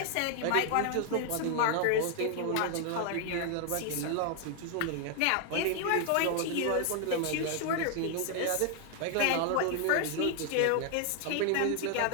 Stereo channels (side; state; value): both; different; correlation 0.00